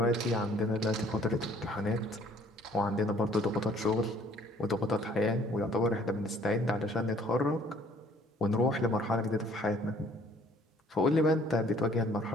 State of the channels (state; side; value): normal; both; correlation 0.58